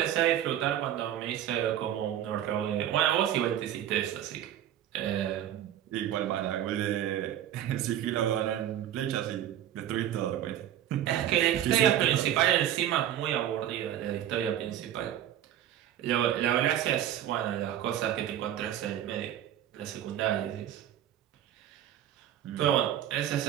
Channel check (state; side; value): quieter; left; 11.4 dB